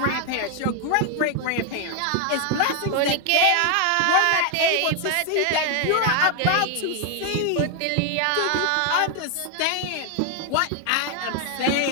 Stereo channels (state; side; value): different; both; correlation 0.00